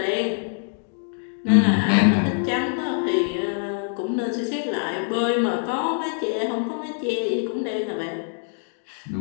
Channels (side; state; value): right; silent; digital silence